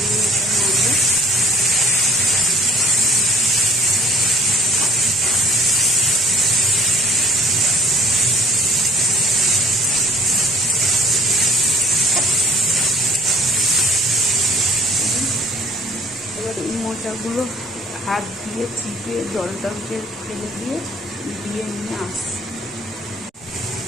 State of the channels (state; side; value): normal; both; correlation 0.55